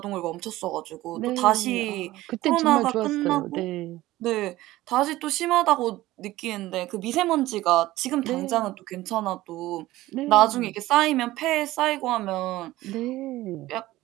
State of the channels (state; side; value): quieter; left; 16.9 dB